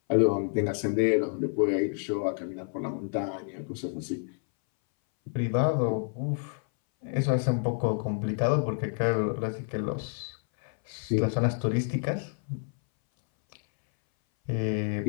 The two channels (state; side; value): silent; right; 59 dB below the other